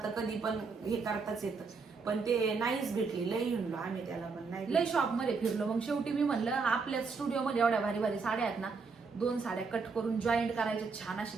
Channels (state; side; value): quieter; left; 4.7 dB